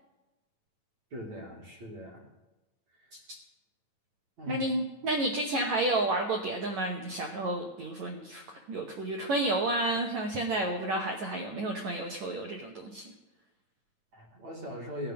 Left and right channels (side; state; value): left; late; 9.0 ms